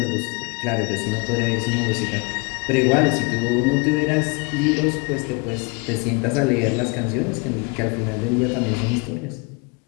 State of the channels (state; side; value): quieter; right; 30.3 dB